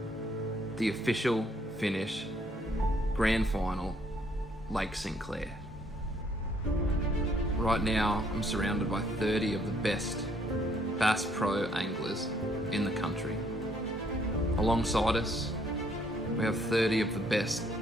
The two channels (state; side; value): normal; both; correlation 0.67